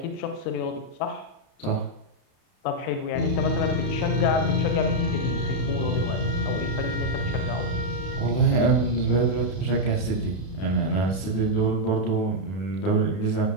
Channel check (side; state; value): right; late; 32 ms